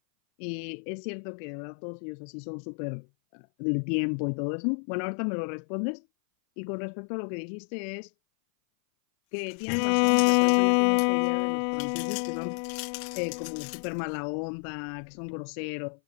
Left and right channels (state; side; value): silent; right; 56 dB below the other